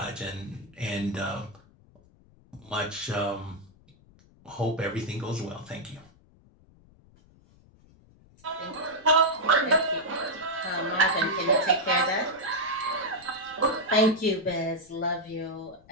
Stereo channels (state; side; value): noise; left; rumble, 27 dB below the sound